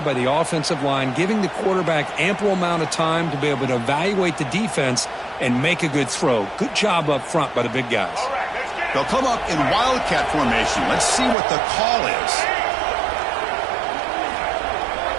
by the offensive line, giving the quarterback ample amount of time to be able to evaluate the defense and make a good throw. Good job up front by the big guys. They'll come up in wildcat formation. Let's see what the call is.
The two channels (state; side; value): drops out; left; at 11.4 s